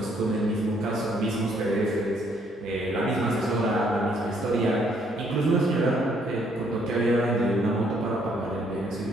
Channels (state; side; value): normal; both; correlation 0.67